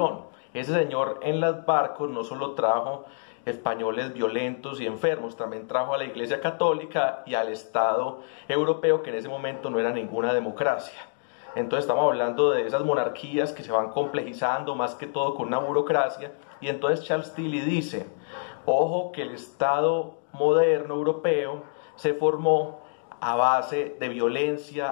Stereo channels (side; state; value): right; silent; digital silence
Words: Ese señor en los barcos no solo trajo españoles violentos y enfermos, también trajo a la Iglesia Católica y al Estado europeo, que en ese momento no era ninguna democracia. Entonces estamos hablando de esas monarquías que se van complejizando más que todo con una burocracia. Y entonces Charles Tilly dice, ojo que el Estado moderno europeo se formó a base de violencia,